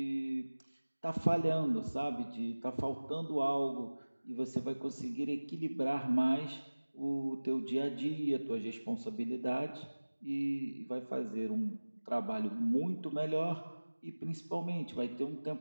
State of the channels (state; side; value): inverted; both; correlation -1.00